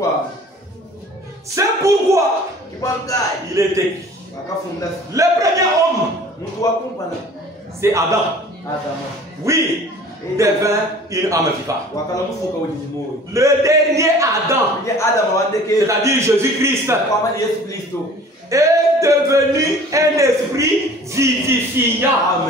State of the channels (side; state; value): both; normal; correlation 0.47